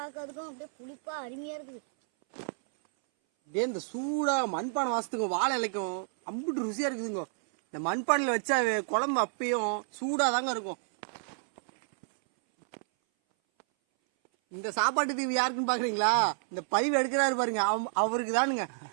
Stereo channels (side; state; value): left; silent; 58 dB below the other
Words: அதுக்கும் அப்படியே புளிப்பா அருமையா இருக்குது. இதே இந்த சூடா மண்பானை வாசத்துக்கும் வாழை இலைக்கும் அம்புட்டு ருசியா இருக்குதுங்க. இந்த மண்பானையில வச்சா குழம்பு அப்பயும் சூடா தாங்க இருக்கும். இந்த சாப்பாட்டு தீவு யாருக்குன்னு பாக்குறீங்களா? இந்த பதிவு எடுக்கிறாரு பாருங்க, அவருக்கு தானுங்க.